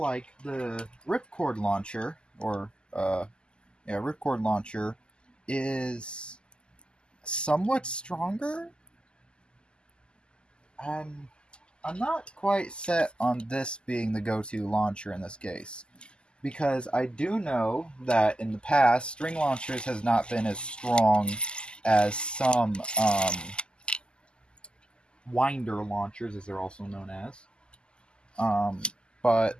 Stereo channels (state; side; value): late; right; 0.049 ms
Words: the Ripcord launcher, Ripcord launcher, is somewhat stronger. I'm not quite set on this being the go-to launcher in this case, because I do know that in the past, string launchers has not been as strong as some winder launchers, as they're also known as.